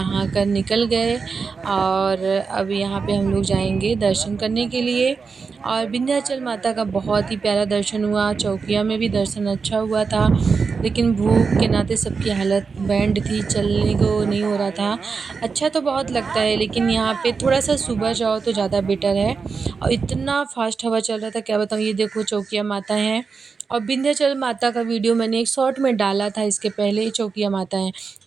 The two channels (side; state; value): left; quieter; 5.1 dB